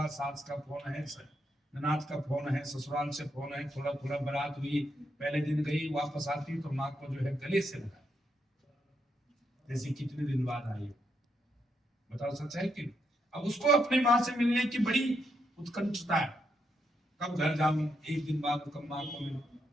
सास का फोन है, ननाद का फोन है, ससुराल से फोन है, थोड़ा थोड़ा बारात हुई, पहले दिन गई, वापस आती तो माँ को जो है गले से लगा, जैसे कितने दिन बाद आई। बताओ सच है कि? अब उसको अपनी माँ से मिलने की बड़ी उत्कंठता है, कब घर जाऊं, एक दिन बाद कब माँ को मिलूं।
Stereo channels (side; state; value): both; normal; correlation 0.79